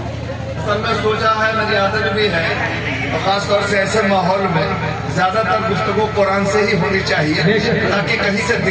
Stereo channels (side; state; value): both; identical; correlation 1.00